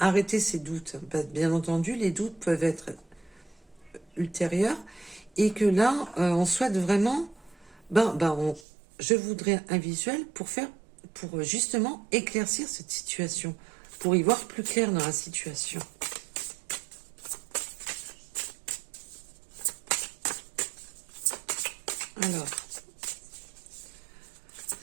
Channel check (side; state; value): left; drops out; at 8.6 s